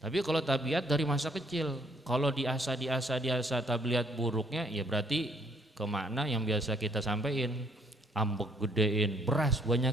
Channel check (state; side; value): normal; both; correlation 0.65